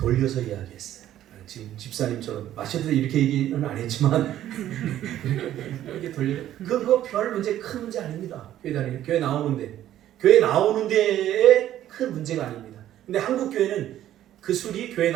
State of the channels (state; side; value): quieter; left; 12.3 dB